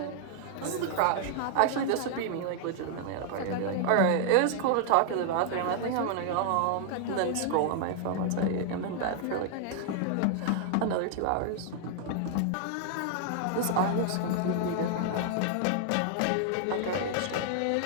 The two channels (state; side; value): different; both; correlation -0.01